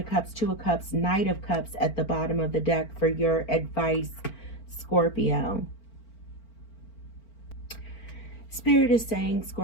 Cups, Two of Cups, Knight of Cups at the bottom of the deck for your advice, Scorpio. Spirit is saying,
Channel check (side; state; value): right; late; 4.4 ms